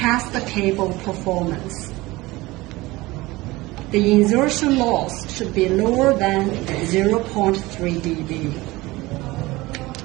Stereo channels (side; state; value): left; quieter; 20.5 dB